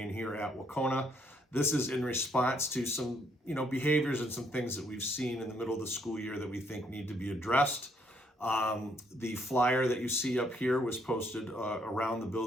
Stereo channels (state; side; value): normal; both; correlation 0.70